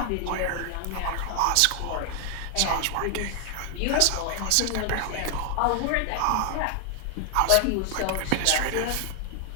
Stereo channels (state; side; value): different; both; correlation 0.00